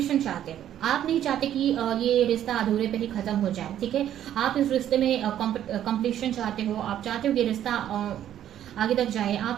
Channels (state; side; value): quieter; left; 11.1 dB